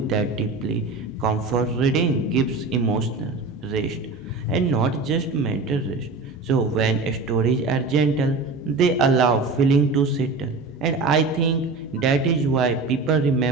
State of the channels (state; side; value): quieter; left; 3.7 dB